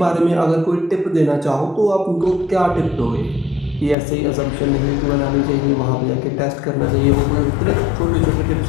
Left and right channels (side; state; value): right; drops out; at 4.0 s